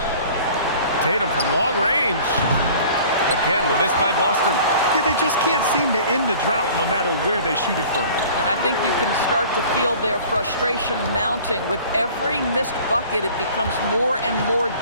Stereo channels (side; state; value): both; inverted; correlation -0.47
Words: Tatum from long range. Again, the miss by Boston. Yeah, they just can't seem to end the drought no matter where they shoot it from. And I think you can start to feel their frustration mounting. With every missed bucket, it becomes more and more